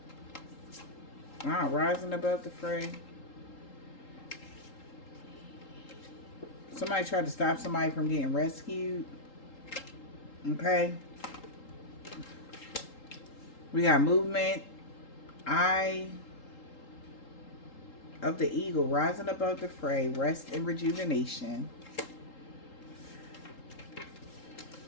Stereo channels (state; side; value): late; right; 3.8 ms